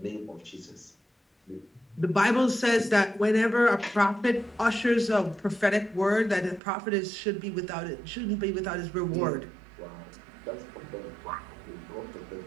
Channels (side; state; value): left; drops out; at 6.6 s